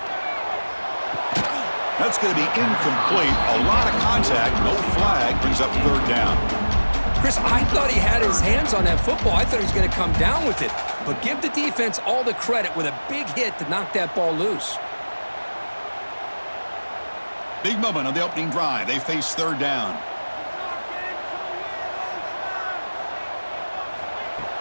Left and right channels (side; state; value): both; inverted; correlation -1.00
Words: That's going to be incomplete. A lot of contact, no flag, brings up third down. Chris, I thought he had his hands on that football. I thought he was going to come down with it. But give the defense all the credit with a big hit to knock that ball loose. Big moment on the opening drive. They face third down.